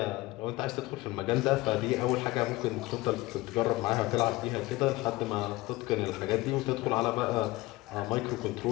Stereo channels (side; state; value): right; quieter; 20.2 dB